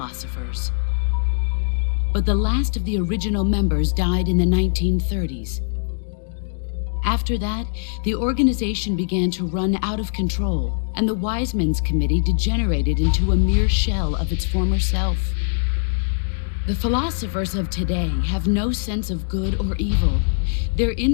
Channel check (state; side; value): silent; right; digital silence